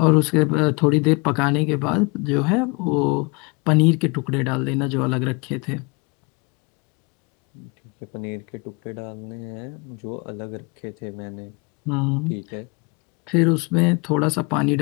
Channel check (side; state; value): right; quieter; 29.9 dB